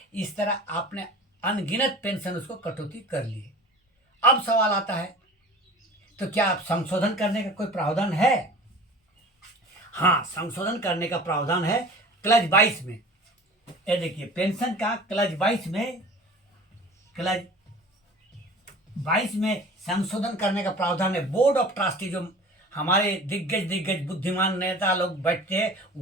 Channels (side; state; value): both; normal; correlation 0.41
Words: इस तरह आपने अनगिनत पेंशन उसको कटौती कर लिए। अब सवाल आता है, तो क्या आप संशोधन करने का कोई प्रावधान है? हाँ, संशोधन करने का प्रावधान है क्लज 22 में। ये देखिए पेंशन का क्लज 22 में संशोधन करने का प्रावधान है। बोर्ड ऑफ ट्रस्टी, जो हमारे दिग्गज बुद्धिमान नेता लोग बैठते हैं,